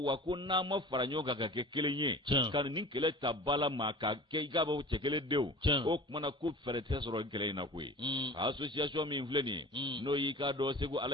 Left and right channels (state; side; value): normal; both; correlation 0.39